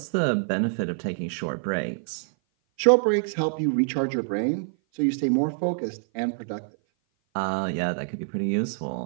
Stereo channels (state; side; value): silent; left; 56 dB below the other